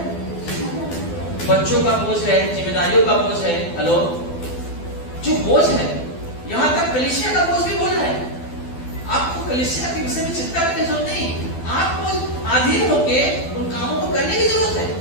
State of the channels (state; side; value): late; right; 12 ms